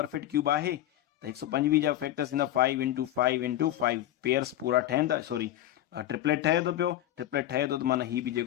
क्यूब आहे। त 125 जा फैक्टर्स ईंदा 5 × 5 × 5, पेयर्स पूरा ठहनि था, सॉरी ट्रिपलेट ठहे थो पियो, ट्रिपलेट ठहे थो त माना ही बि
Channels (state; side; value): quieter; right; 13.3 dB